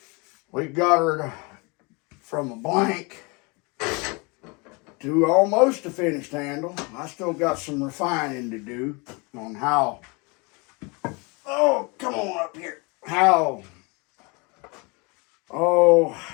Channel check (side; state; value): right; quieter; 29.2 dB